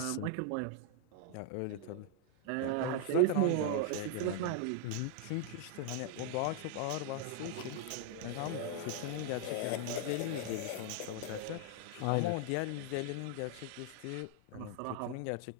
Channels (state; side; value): different; both; correlation -0.01